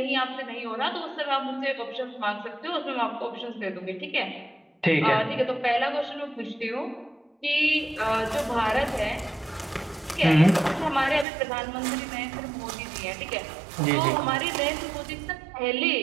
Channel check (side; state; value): left; drops out; at 11.2 s